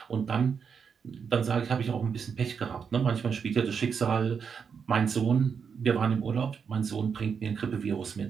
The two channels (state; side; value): quieter; left; 6.4 dB